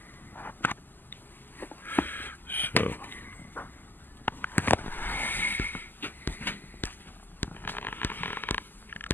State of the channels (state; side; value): late; right; 0.090 ms